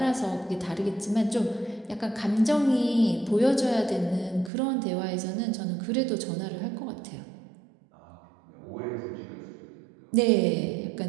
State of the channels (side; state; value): left; drops out; at 4.5 s